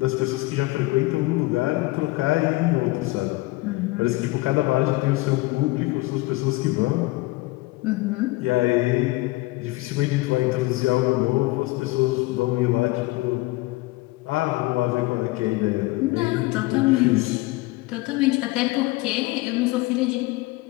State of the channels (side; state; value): right; quieter; 21.2 dB